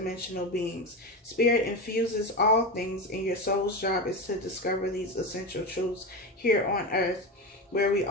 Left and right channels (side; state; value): both; normal; correlation 0.19